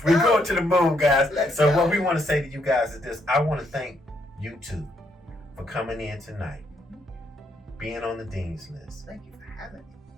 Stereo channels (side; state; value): both; normal; correlation 0.74